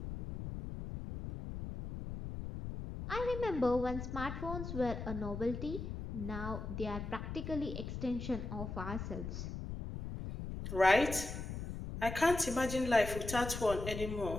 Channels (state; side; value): noise; left; rumble, 6 dB below the sound